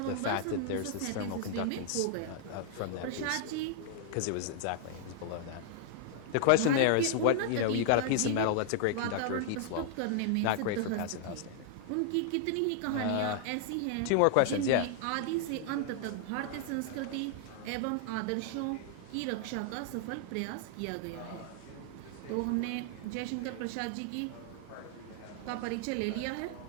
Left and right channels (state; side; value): different; both; correlation 0.00